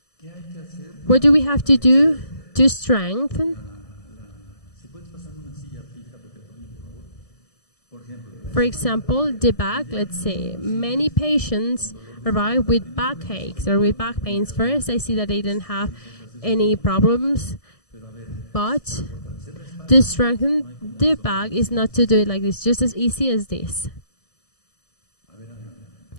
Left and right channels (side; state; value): right; late; 1.6 ms